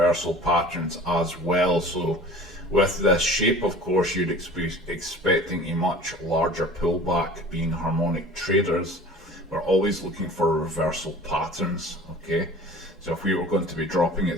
patterns as well. So, with this shape, of course, you'd be expecting a much larger pullback. Being harmonic traders, we're always looking for reversal patterns, okay? So, if we were going to be dropping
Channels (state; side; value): normal; both; correlation 0.43